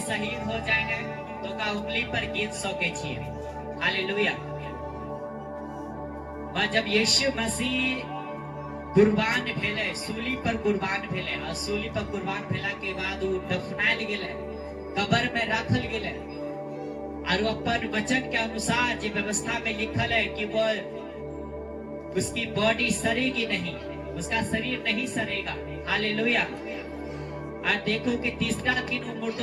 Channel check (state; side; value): identical; both; correlation 1.00